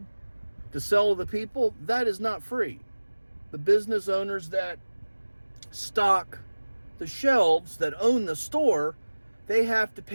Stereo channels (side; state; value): both; inverted; correlation -1.00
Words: to sell to the people, that is not free. The business owners that stock the shelves, that own the store, they have to